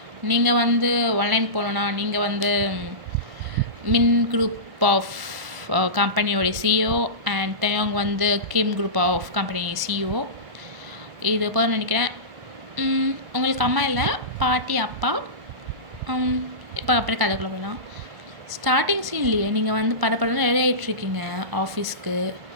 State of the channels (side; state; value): left; late; 1.0 ms